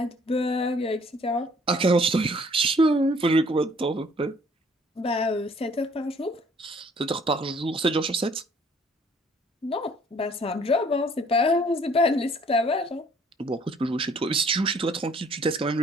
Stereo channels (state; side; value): normal; both; correlation 0.59